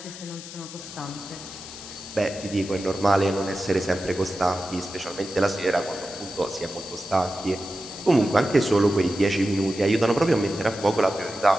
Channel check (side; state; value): left; noise; hiss, 13 dB below the sound